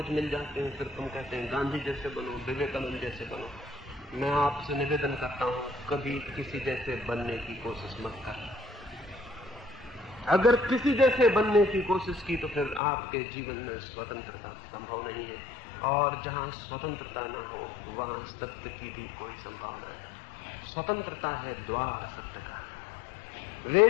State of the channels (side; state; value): right; drops out; at 12.8 s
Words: मिल जाते हैं, फिर तुम कहते हैं गांधी जैसे बनो, विवेकानंद जैसे बनो। मैं आपसे निवेदन करता हूं कभी किसी जैसे बनने की कोशिश मत कर। अगर किसी जैसे बनने की कोशिश की तो फिर आपके जीवन में स्वतंत्रता संभव नहीं है, और जहां स्वतंत्रता न हो वहां सत्य की भी कोई संभावना है। स्वतंत्रता है द्वार सत्य का। वे